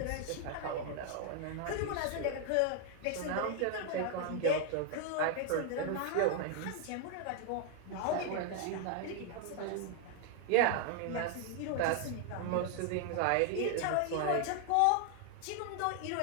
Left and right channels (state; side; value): different; both; correlation 0.00